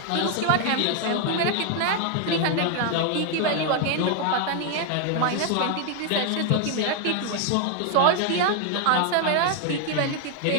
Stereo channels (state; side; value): different; both; correlation 0.00